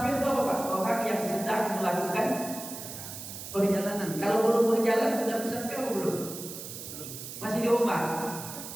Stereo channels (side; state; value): right; noise; hiss, 10 dB below the sound